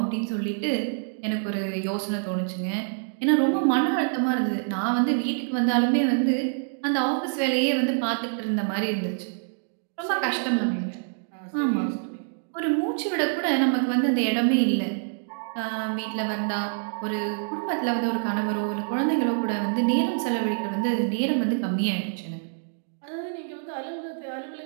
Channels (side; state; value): left; silent; digital silence